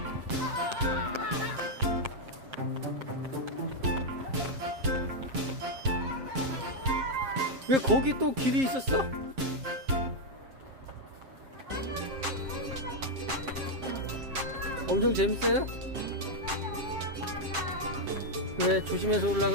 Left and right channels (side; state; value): left; late; 7.5 ms